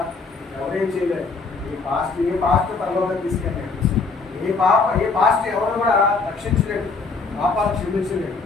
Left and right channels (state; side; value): quieter; right; 4.3 dB